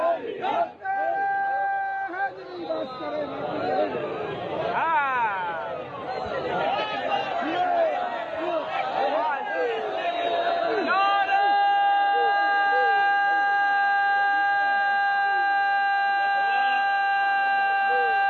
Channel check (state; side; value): identical; both; correlation 1.00